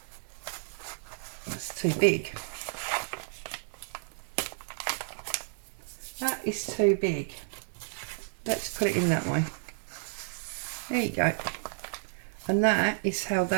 big. That is too big. Let's put it in that way. There you go. And that is how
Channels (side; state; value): left; silent; digital silence